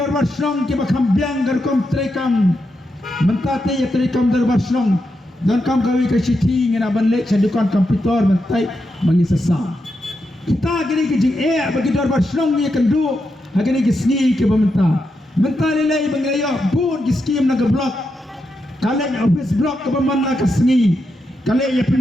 bar snong ki bakham biang gar kom trekam. Mentate ya trekam dor bar snong. Dan kam kawi ke siti ngena banlek sadukan komputer mentai mengisasa. Kita gini ke jing bagi dor bar snong ni kendu. Hagini ke sni ke bamenta. Menta lelai bangaya bun ki skim na ke blok. Kale office blok ke bamana ke sni. Kale ya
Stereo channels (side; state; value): both; normal; correlation 0.85